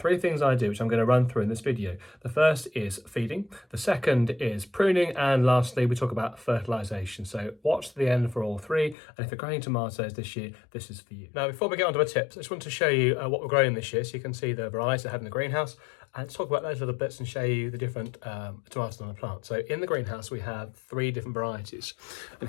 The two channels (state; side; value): drops out; right; at 9.0 s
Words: things I do, which I'm going to run through in this video. The first is feeding, the second is pruning, and lastly we talk about fertilisation. So watch to the end for all three, and if you're growing tomatoes this year, this is for you. Now before we get on to our tips, I just want to show you what we're growing this year so you can see the varieties I have in the greenhouse, and let's talk about those little bits and show you the different tomatoes on the plant. So in the greenhouse we have three different varieties, and